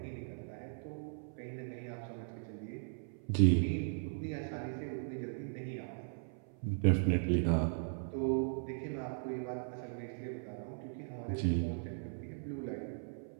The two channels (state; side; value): silent; left; 52 dB below the other